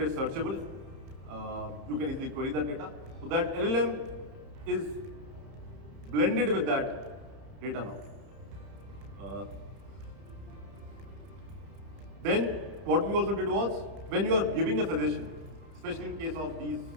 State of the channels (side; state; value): left; late; 31 ms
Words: searchable. You can easily query that data. So that LLM is blended with that data now. Then what we also did was, when you are giving a suggestion, especially in case of these